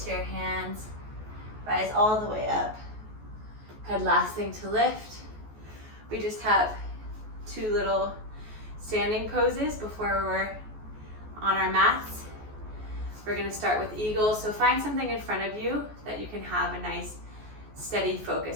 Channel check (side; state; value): left; late; 14 ms